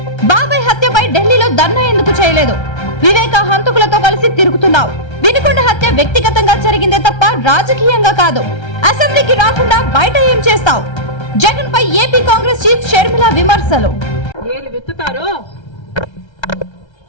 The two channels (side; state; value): right; late; 1.3 ms